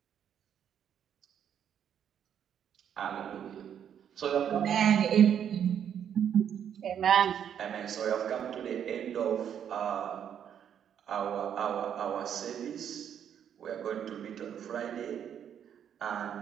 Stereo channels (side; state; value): left; quieter; 8.9 dB